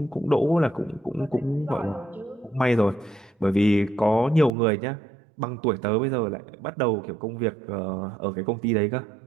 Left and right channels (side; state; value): left; drops out; at 4.5 s